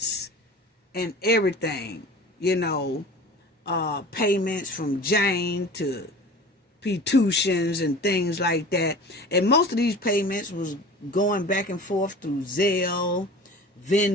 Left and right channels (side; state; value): both; normal; correlation 0.39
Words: and everything, payments from Jane to Petutions and things like that. And most of these payments was going back and forth through Zelle,